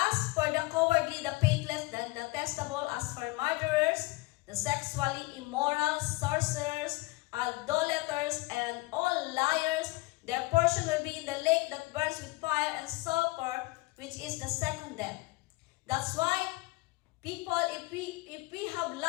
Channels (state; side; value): quieter; right; 22.1 dB